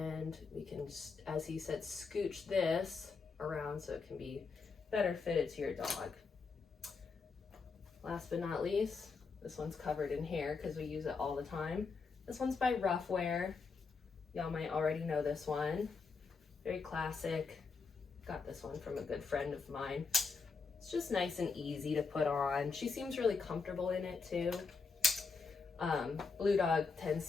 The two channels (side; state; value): right; quieter; 4.8 dB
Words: we can, as he said, scooch this around so it can be better fitted to your dog. Last but not least, this one's covered in hair because we use it all the time. This one's by Ruffwear. Y'all might already know this one. Very classic. Got this one from a good friend of mine. It's just nice and easy to put on. She seems really comfortable in it too. Blue Dog